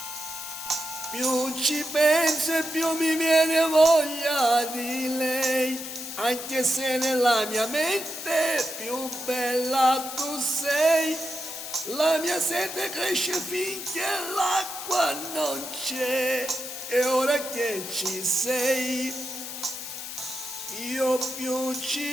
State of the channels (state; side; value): noise; left; hiss, 8 dB below the sound